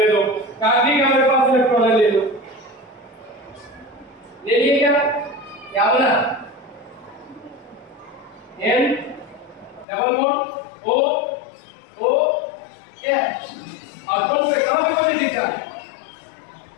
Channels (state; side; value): drops out; right; at 9.9 s